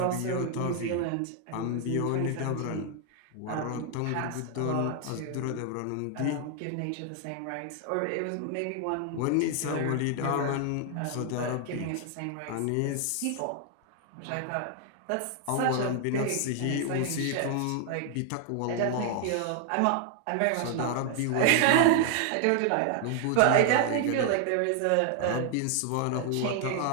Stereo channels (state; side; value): different; both; correlation 0.00